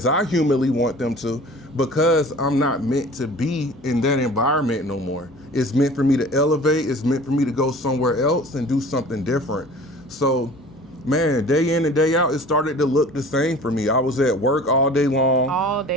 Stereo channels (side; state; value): left; noise; hum, 27 dB below the sound